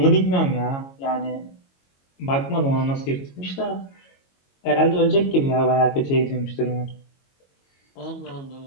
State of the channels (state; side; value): late; right; 22 ms